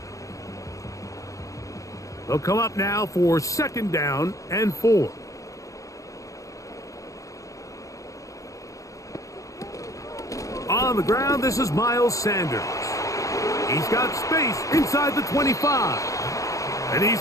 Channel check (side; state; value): right; late; 0.16 ms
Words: They'll come up now for second down and 4. On the ground, this is Miles Sanders. He's got space inside the 25. And